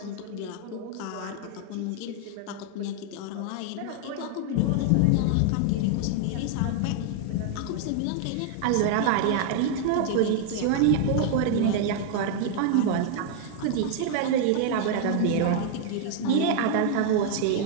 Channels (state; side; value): different; both; correlation 0.00